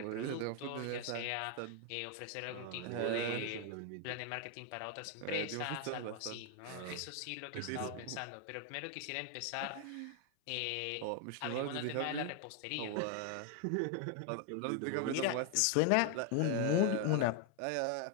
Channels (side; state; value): both; different; correlation 0.01